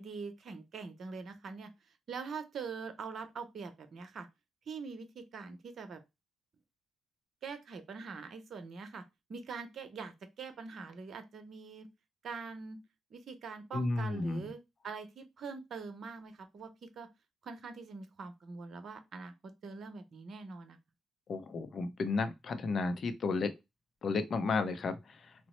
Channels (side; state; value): both; normal; correlation 0.79